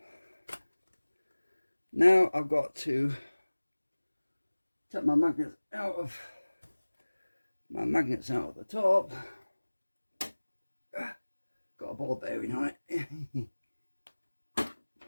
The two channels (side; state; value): both; inverted; correlation -1.00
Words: Now I've got to take my magnets out of the top. Got a ball bearing on it.